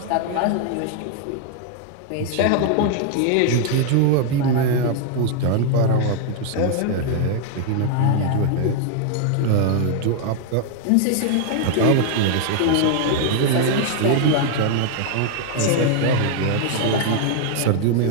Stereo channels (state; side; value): different; both; correlation 0.00